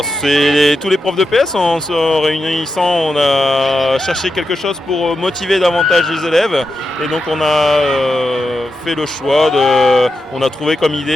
c'est tous les profs de PS, en se réunissant, on a cherché quelque chose pour motiver davantage les élèves et donc on a fait le choix, on a trouvé comme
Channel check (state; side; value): normal; both; correlation 0.87